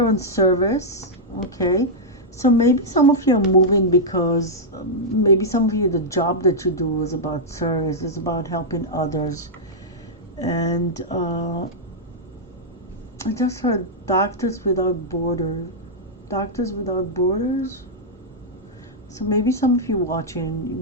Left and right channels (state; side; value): normal; both; correlation -0.07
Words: on service. Okay. So maybe some of you are moving because maybe some of you, the job that you do is about service, is about helping others. And I just heard Doctors Without Borders. Doctors Without Borders. So maybe some of you watching, you